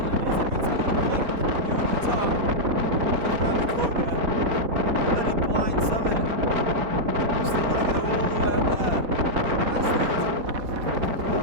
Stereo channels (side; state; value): left; late; 4.3 ms